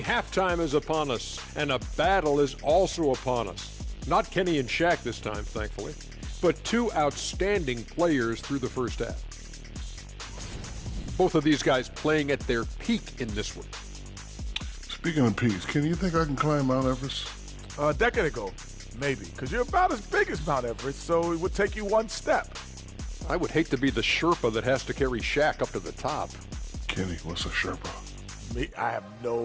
halftime is upon us, and a battle is also upon us. Not Kenny and Shaq this time, thankfully, but 2 outstanding players through the first half. Both of these guys playing at their peak in this one. Speaking of peaks, Kenny, you think I can climb Mount Everest? A decade ago, maybe, because you're about as big as Mount Everest, so it would take you 1 step. I would hate to be the Sherpa that has to carry Shaq up to the top. Kenny, what's a Sherpa? Me, I have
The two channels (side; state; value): both; identical; correlation 1.00